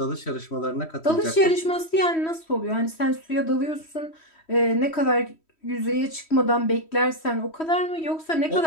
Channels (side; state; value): right; late; 3.1 ms